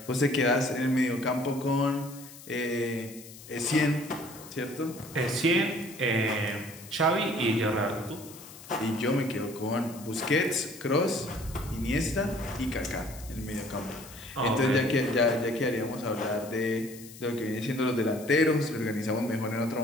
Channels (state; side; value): noise; left; hiss, 17 dB below the sound